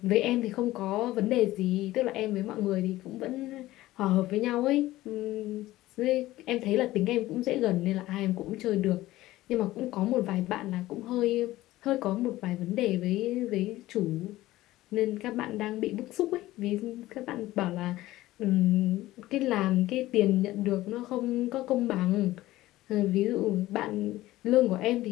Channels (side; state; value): right; quieter; 16.5 dB